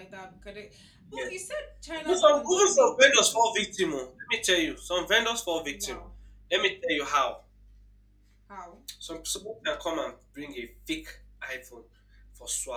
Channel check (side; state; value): both; identical; correlation 1.00